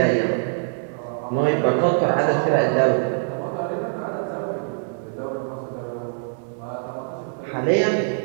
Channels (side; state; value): left; silent; digital silence